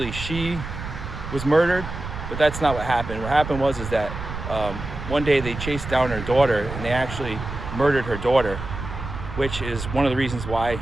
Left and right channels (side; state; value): right; noise; rumble, 8 dB below the sound